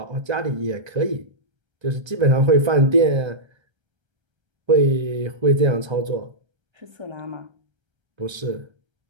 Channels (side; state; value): left; late; 1.3 ms